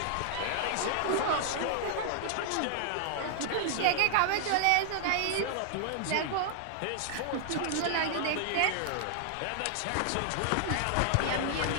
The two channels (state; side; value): different; both; correlation 0.00